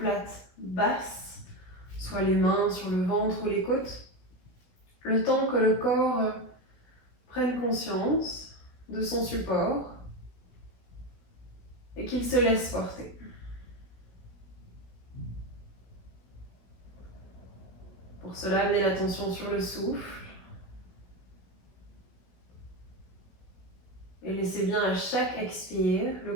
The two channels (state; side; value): late; right; 16 ms